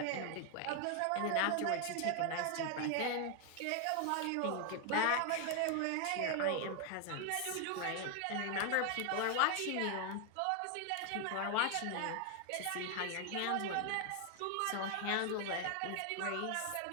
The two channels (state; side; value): different; both; correlation 0.00